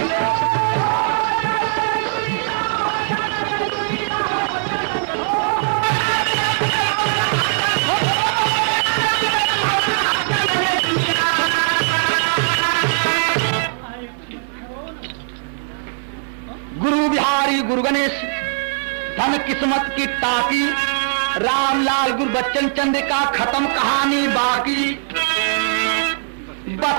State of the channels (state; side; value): silent; left; 59 dB below the other